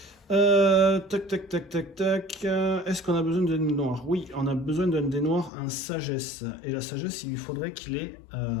tac. Est-ce qu'on a besoin d'un dé noir? Oui, on a besoin d'un dé noir en sagesse. Et la sagesse, il lui faudrait qu'il ait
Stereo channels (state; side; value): drops out; right; at 5.5 s